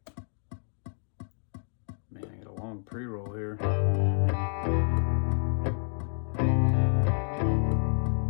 Man, I got a long pre-roll here.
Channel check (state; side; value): silent; right; 56 dB below the other